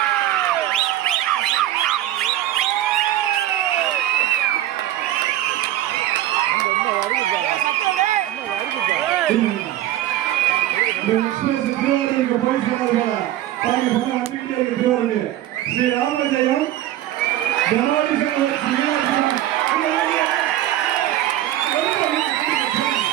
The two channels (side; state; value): left; quieter; 13.7 dB